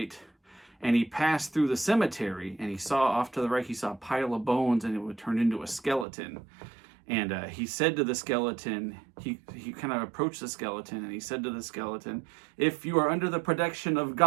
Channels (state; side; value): drops out; left; at 6.1 s